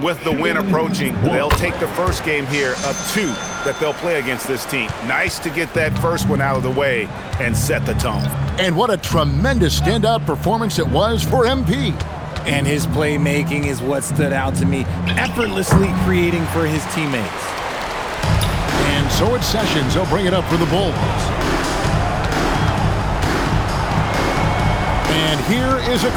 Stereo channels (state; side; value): identical; both; correlation 1.00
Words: with the win approaching, they'll take the first game here of 2 that they'll play against this team. Nice to get that first one out of the way and set the tone. And what a tremendous standout performance it was for MP. And his playmaking is what stood out to me, effortlessly creating for his teammates. And so it's Sessions. He'll bring it up for the Bulls. And here is